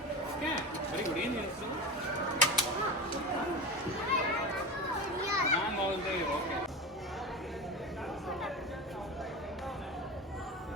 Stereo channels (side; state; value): both; normal; correlation 0.25